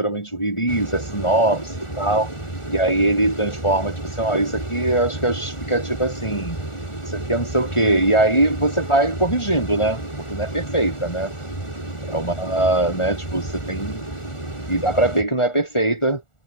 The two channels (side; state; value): right; late; 1.4 ms